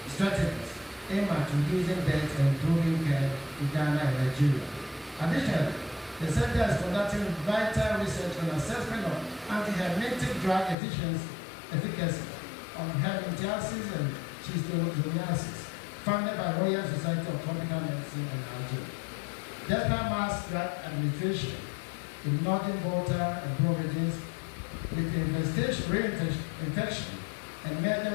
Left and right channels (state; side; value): drops out; right; at 10.8 s